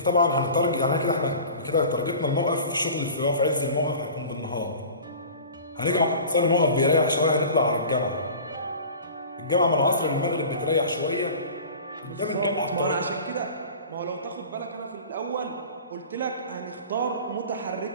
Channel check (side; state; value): both; inverted; correlation -0.40